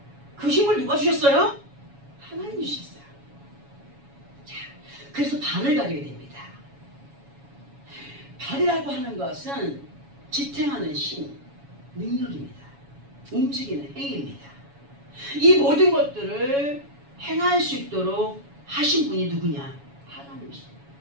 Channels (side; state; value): left; late; 7.1 ms